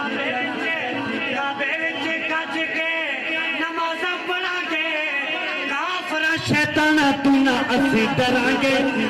شیطان تو نہ اسی ڈرا گے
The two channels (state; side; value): identical; both; correlation 1.00